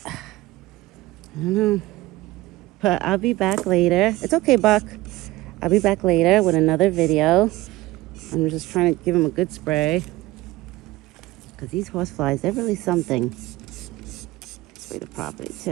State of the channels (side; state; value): left; quieter; 18.4 dB